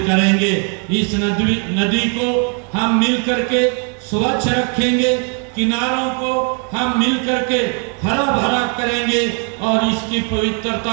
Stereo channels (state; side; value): quieter; left; 38.9 dB